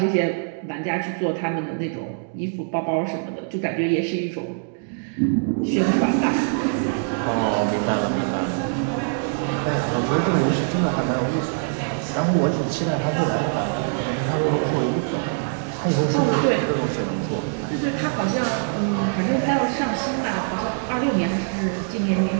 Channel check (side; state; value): left; silent; 63 dB below the other